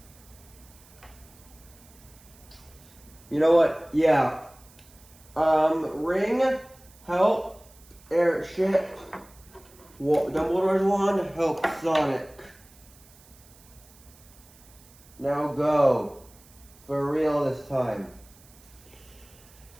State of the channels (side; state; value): right; noise; hiss, 25 dB below the sound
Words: You know what? Yeah. Ring, help, Airship, Dumbledore's wand, help, Sonic. Now go. For real this time.